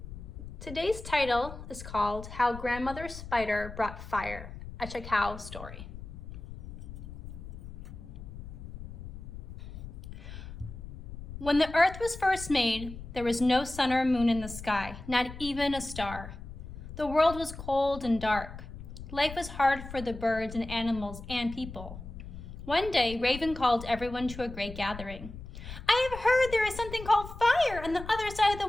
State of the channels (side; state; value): left; noise; rumble, 12 dB below the sound